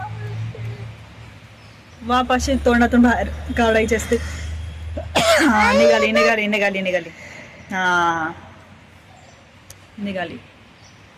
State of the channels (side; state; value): both; identical; correlation 1.00